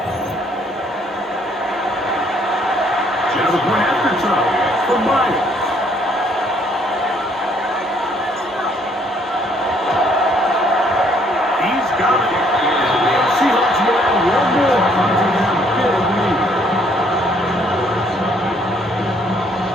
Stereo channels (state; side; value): normal; both; correlation 0.65